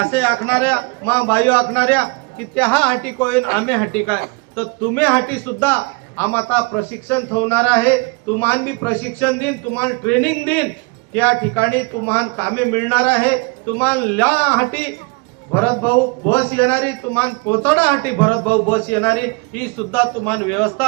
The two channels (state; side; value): quieter; left; 29.5 dB